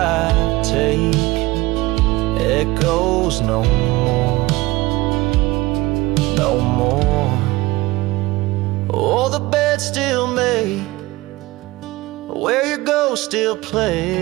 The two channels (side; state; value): left; quieter; 20.0 dB